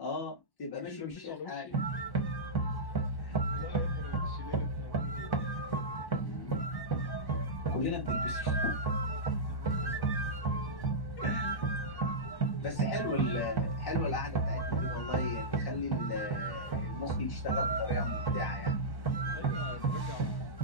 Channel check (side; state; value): right; late; 1.1 ms